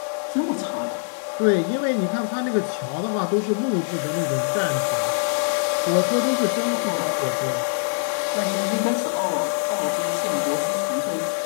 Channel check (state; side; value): silent; right; digital silence